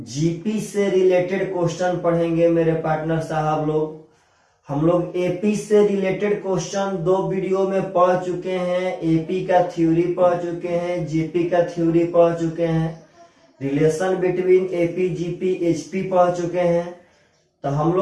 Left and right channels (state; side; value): identical; both; correlation 1.00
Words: से रिलेटेड क्वेश्चन पढ़ेंगे। मेरे पार्टनर साहब हम लोग एपी से रिलेटेड क्वेश्चन 2 वीडियो में पढ़ चुके हैं। एपी का थ्योरी पढ़ चुके हैं, जीपी का थ्योरी पढ़ चुके हैं, relation between AP GP HP पढ़ चुके हैं। तो हम